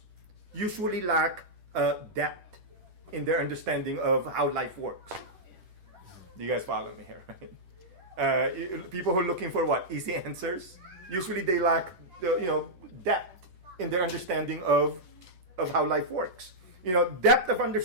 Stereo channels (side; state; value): left; late; 11 ms